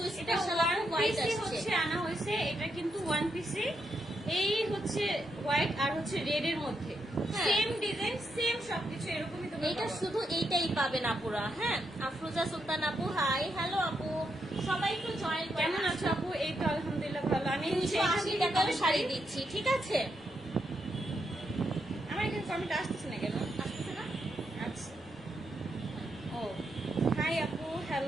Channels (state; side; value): normal; both; correlation 0.81